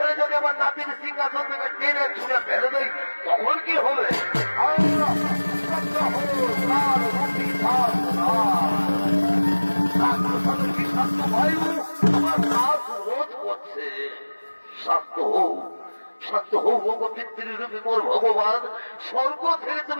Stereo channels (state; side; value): inverted; both; correlation -1.00